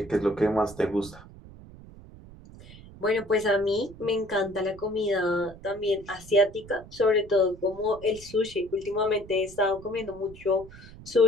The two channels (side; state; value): right; noise; rumble, 18 dB below the sound